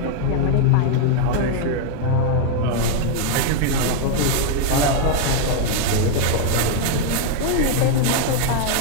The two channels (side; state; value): both; different; correlation 0.00